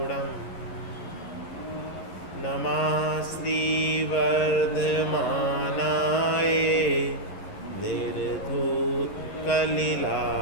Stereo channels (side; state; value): right; late; 11 ms